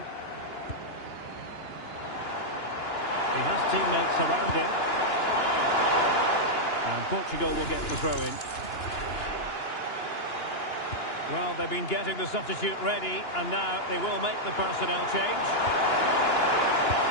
He has teammates around him. And Portugal will get the throw-in. Well, they've been getting the substitute ready, and now they will make the personnel change.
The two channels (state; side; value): late; right; 2.9 ms